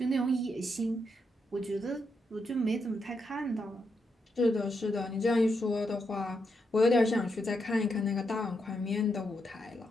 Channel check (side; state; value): both; normal; correlation 0.82